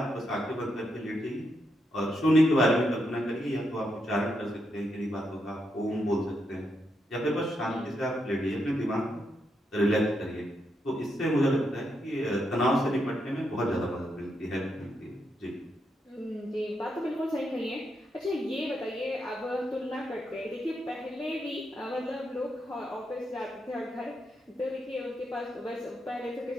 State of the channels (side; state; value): both; normal; correlation 0.81